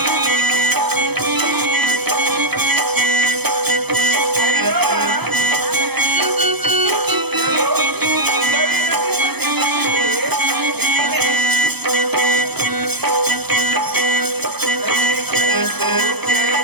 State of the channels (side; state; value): left; late; 0.98 ms